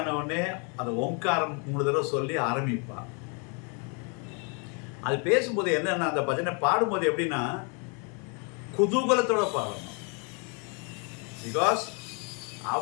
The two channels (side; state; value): right; quieter; 36.2 dB